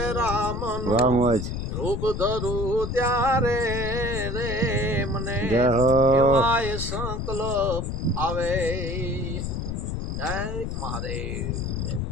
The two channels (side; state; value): left; noise; rumble, 3 dB below the sound